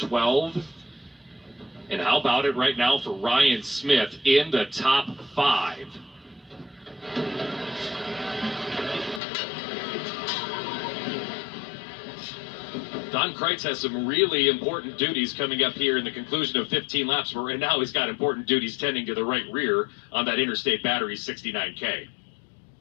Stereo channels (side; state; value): right; drops out; at 9.2 s